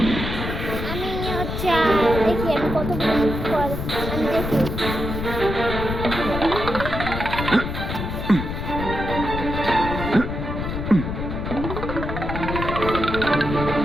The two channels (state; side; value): noise; left; rumble, 4 dB below the sound